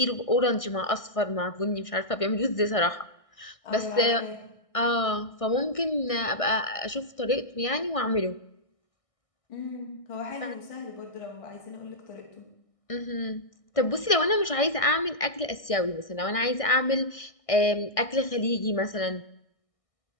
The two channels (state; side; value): late; right; 1.6 ms